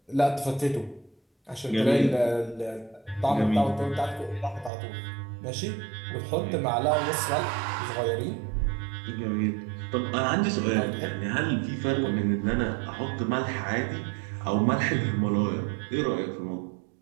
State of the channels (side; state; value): left; drops out; at 4.7 s